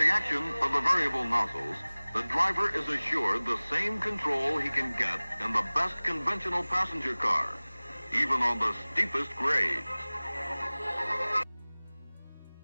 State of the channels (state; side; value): inverted; both; correlation -1.00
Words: action of the variable nozzles, the driver is assured the same control he can get in the best conventional passenger car, even on the steepest grades.